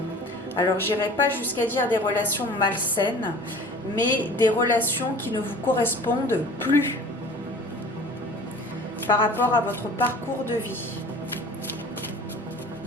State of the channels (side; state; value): both; normal; correlation 0.44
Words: Alors, j'irai pas jusqu'à dire des relations malsaines, mais des relations qui ne vous correspondent plus par rapport à votre parcours de vie,